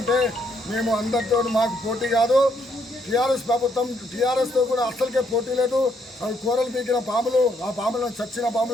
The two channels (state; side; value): normal; both; correlation 0.72